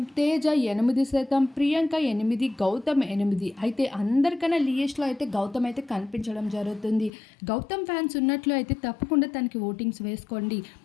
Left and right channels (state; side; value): drops out; right; at 7.1 s